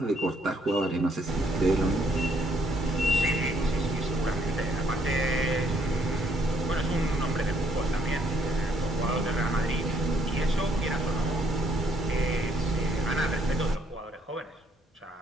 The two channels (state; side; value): normal; both; correlation 0.68